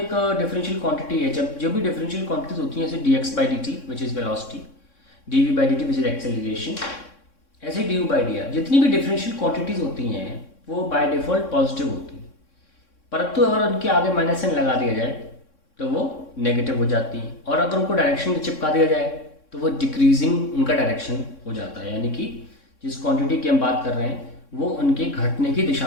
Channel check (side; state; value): right; late; 3.6 ms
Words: डिफरेंशियल क्वांटिटी है, जब जो भी डिफरेंशियल क्वांटिटीज होती हैं जैसे D X by D T which is velocity, D V by D T which is acceleration, ऐसे D U by D R जितनी भी डिफरेंशियल क्वांटिटीज होती हैं वो बाय डिफॉल्ट पॉजिटिव होती हैं, परंतु अगर उनके आगे माइनस साइन लगा दिया जाए तो वो नेगेटिव हो जाती हैं, और अगर उनको डायरेक्शन चिपका दिया जाए तो वो डिक्रीजिंग उनका डायरेक्शन हो जाता है, यानी कि जिस क्वांटिटी की हम बात कर रहे हैं वो उनके घटने की